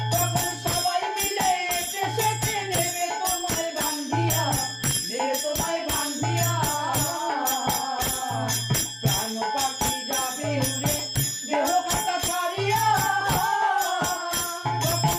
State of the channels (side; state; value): both; identical; correlation 1.00